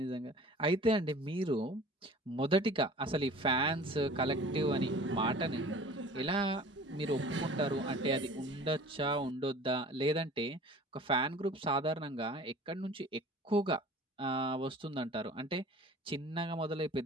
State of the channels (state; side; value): normal; both; correlation 0.44